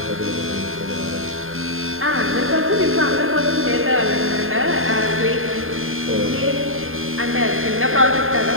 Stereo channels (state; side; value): late; left; 0.60 ms